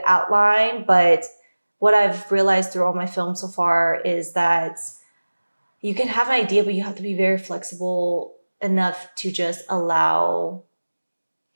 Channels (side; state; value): both; inverted; correlation -1.00